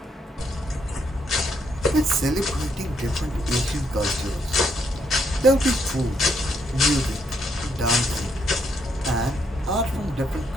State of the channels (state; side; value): normal; both; correlation 0.74